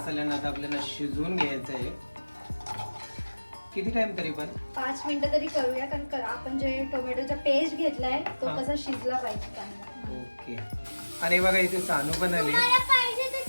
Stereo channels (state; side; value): inverted; both; correlation -1.00